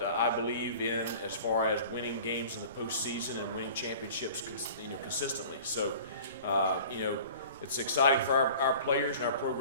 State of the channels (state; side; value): inverted; both; correlation -0.43